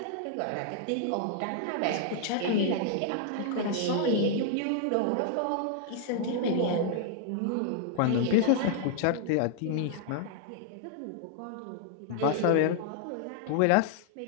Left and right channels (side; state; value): both; different; correlation -0.01